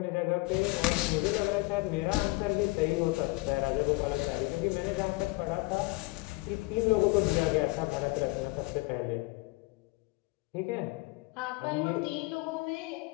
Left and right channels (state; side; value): quieter; right; 24.1 dB